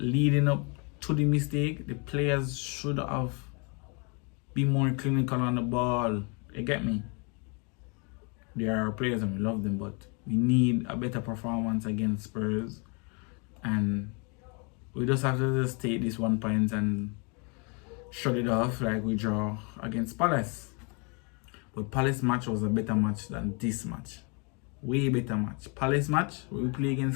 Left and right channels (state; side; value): quieter; right; 33.7 dB